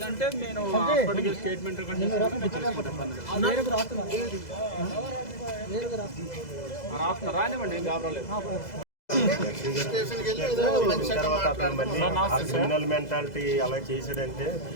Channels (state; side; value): late; right; 2.0 ms